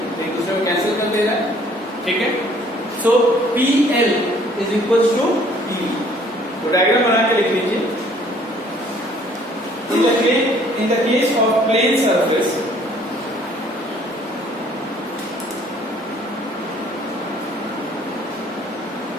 एक दूसरे को कैंसिल कर दे रहा है, ठीक है। So PL is equals to PV। तो डायग्राम बना के लिख लीजिए। In the case of plane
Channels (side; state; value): both; normal; correlation 0.58